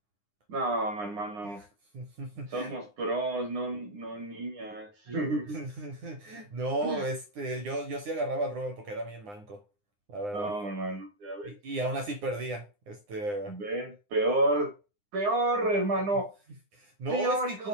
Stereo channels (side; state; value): left; late; 9.8 ms